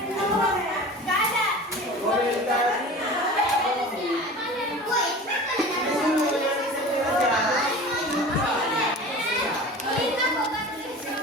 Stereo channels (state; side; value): normal; both; correlation 0.37